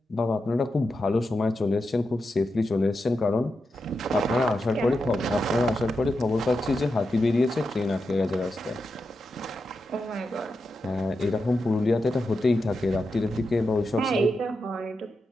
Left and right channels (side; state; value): both; normal; correlation 0.88